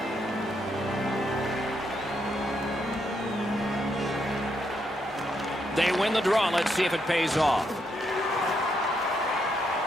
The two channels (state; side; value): normal; both; correlation 0.78